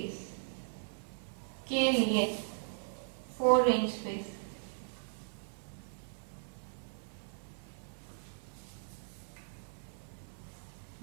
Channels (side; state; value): left; silent; 52 dB below the other